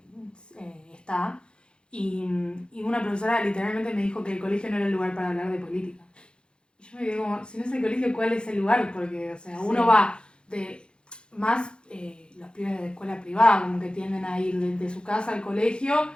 está. Y una profesora literalmente me dijo que el colegio no era el lugar para hablar de política. Y yo me quedé como, si no es el colegio, ¿cuál es el lugar? Porque, o sea, uno va de más los pibes de escuela privada, como que tienden a ir de su casa al colegio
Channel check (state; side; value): late; right; 0.052 ms